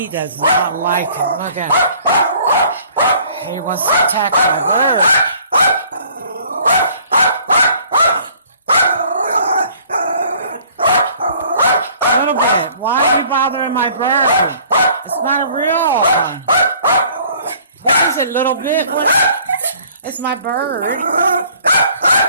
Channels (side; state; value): both; inverted; correlation -0.56